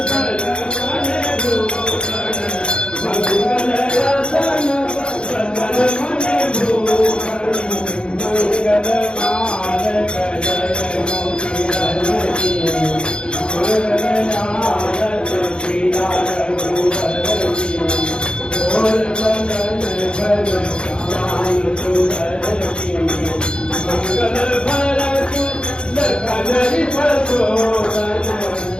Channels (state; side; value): late; right; 0.052 ms